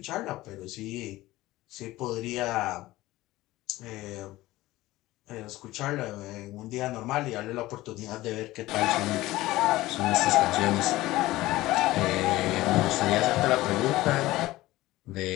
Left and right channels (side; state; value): right; quieter; 17.6 dB